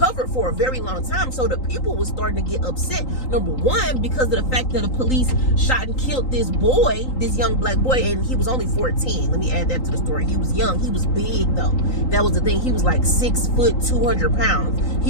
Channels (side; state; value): right; late; 3.8 ms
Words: for a very long time. So the people was starting to get upset. Number one, because of the fact that the police shot and killed this boy, this young black boy, and he was only 14. Let me add that to the story. He was young. He was big though. That was the thing. He was like 6 foot, 200 pounds.